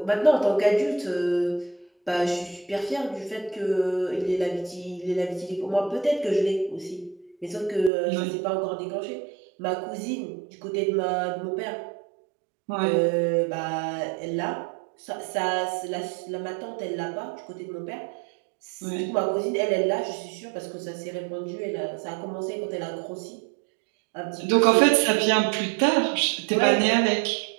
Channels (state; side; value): drops out; left; at 7.9 s